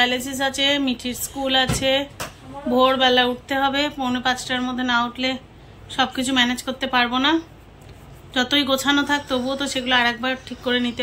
আছে, মিঠির স্কুল আছে, ভোরবেলা উঠতে হবে। 4:45টার মধ্যে না উঠলে সব কিছু ম্যানেজ করতে পারবো না। যতই গোছানো থাক তবুও তো সেগুলো আর একবার ঠিক করে নিতে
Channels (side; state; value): both; identical; correlation 1.00